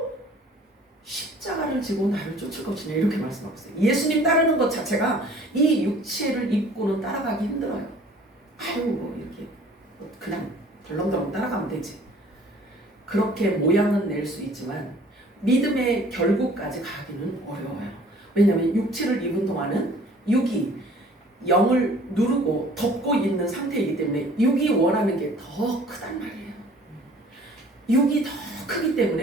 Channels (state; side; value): normal; both; correlation 0.52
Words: 십자가를 지고 나를 쫓을 것이냐, 이렇게 말씀하고 있어요. 예수님 따르는 것 자체가 이 육체를 입고는 따라가기 힘들어요. 이렇게 그냥 덜렁덜렁 따라가면 되지. 그렇게 모양은 낼 수 있지만 믿음의 결국까지 가기는 어려워요. 왜냐하면 육체를 입은 동안은 육이 영을 누르고 덮고 있는 상태이기 때문에 육이 원하는 게 더 크단 말이에요. 육이 더 크기